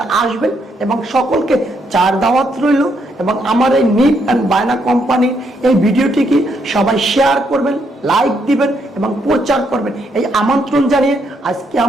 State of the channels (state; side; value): normal; both; correlation 0.75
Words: আসবেন, এবং সকলকে চার দাওয়াত রইল। এবং আমার এই নিপ অ্যান্ড বায়না কোম্পানির এই ভিডিওটিকে সবাই শেয়ার করবেন, লাইক দিবেন এবং প্রচার করবেন, এই আমন্ত্রণ জানিয়ে আজকে